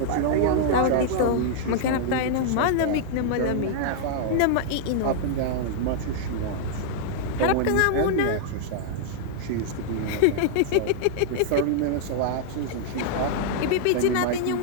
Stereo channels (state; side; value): different; both; correlation -0.01